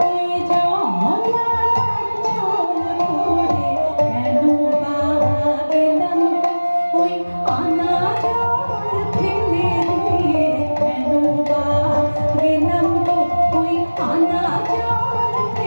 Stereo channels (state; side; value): inverted; both; correlation -1.00